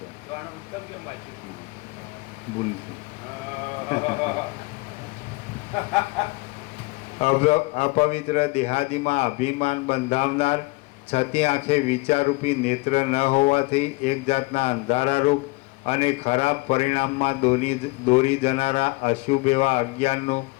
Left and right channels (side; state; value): right; quieter; 24.9 dB